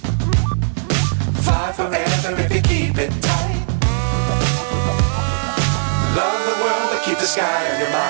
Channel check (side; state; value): left; silent; digital silence